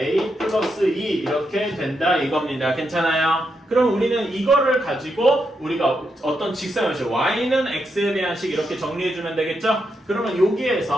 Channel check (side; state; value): both; normal; correlation 0.82